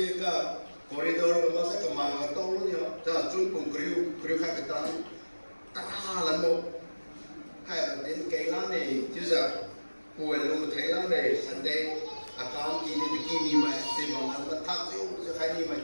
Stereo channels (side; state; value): both; inverted; correlation -1.00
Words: ka corridor ko sa kamanga tolo niya. Ta sun kung kriu ka katan ta lan mo hay đến cái lá này chứ giờ buổi luôn thấy lá này sẵn đây account kini bikini mà tìm bằng anh ta thắc chứ khai đi mà